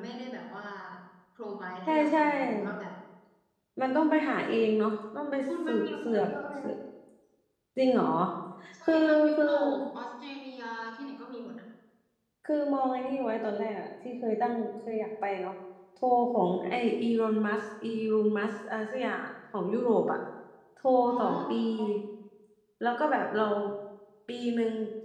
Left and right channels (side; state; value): both; identical; correlation 1.00